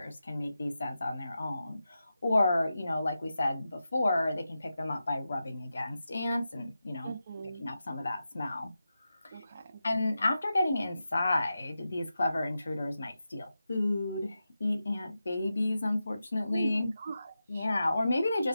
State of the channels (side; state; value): both; inverted; correlation -0.91